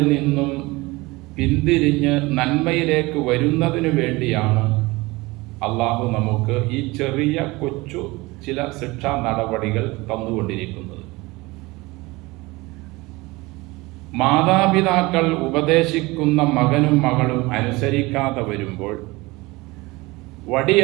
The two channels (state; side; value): quieter; left; 22.4 dB